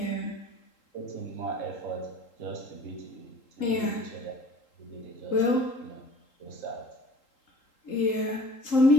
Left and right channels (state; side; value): late; right; 3.8 ms